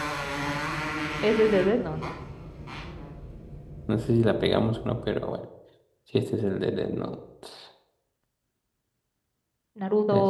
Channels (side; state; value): both; identical; correlation 1.00